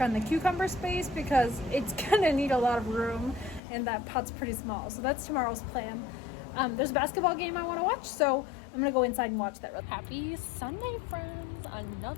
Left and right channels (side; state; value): right; drops out; at 3.6 s